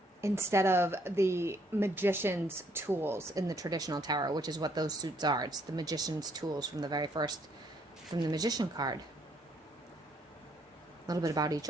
magician's tools in the traditional tarot, which is what those suits are. It's the magician's tools from the magician card. A little bit about each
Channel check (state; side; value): normal; both; correlation 0.68